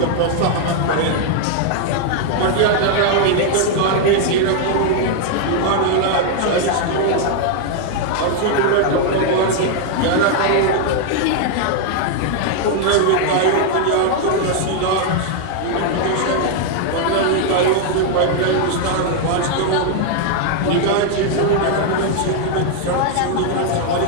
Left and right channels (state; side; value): different; both; correlation 0.00